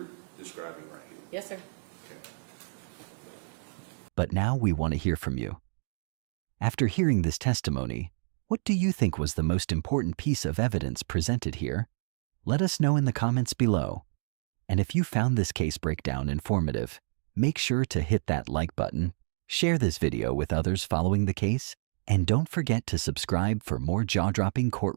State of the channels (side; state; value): left; silent; digital silence